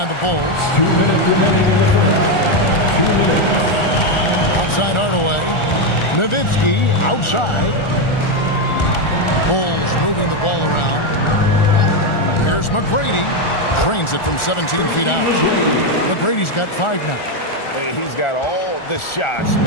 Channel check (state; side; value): late; right; 1.4 ms